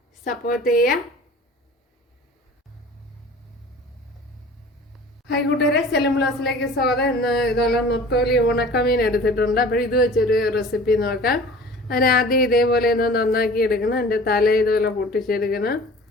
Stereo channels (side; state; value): both; normal; correlation 0.44